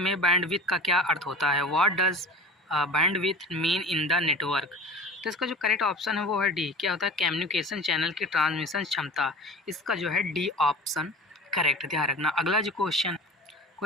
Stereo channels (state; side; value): normal; both; correlation 0.37